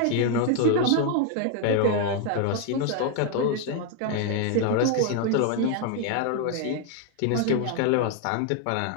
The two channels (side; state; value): both; different; correlation 0.01